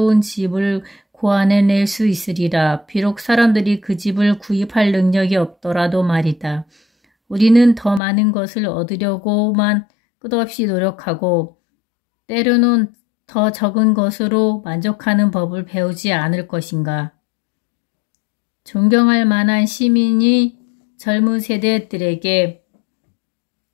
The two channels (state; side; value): drops out; right; at 8.0 s